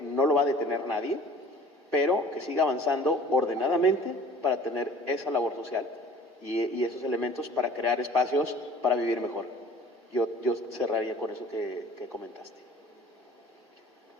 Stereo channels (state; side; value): normal; both; correlation 0.48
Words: no lo va a detener nadie, pero que siga avanzando ordenadamente para tener esa labor social y esos elementos para crear espacios para vivir mejor. Yo cerraría con eso que comentaste.